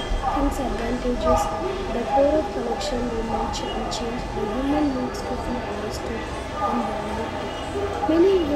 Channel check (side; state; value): both; identical; correlation 1.00